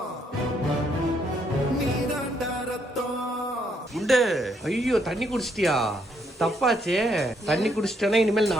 நீதாண்டா ரத்தம். குண்டு, ஐயோ தண்ணி குடிச்சிட்டியா? தப்பாச்சே. தண்ணி குடிச்சிட்டேன்னா இனிமேல்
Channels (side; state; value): both; normal; correlation 0.72